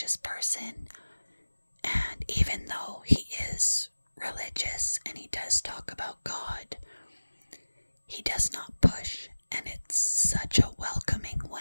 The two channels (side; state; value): both; inverted; correlation -1.00